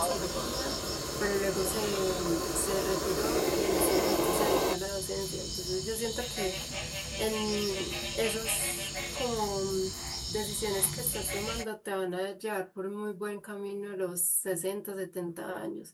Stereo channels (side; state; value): both; identical; correlation 1.00